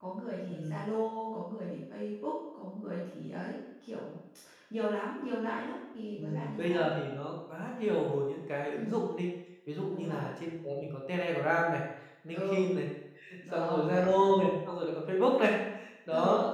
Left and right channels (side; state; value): both; identical; correlation 1.00